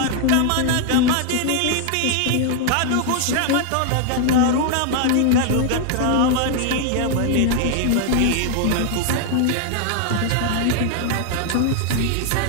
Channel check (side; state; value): both; different; correlation 0.00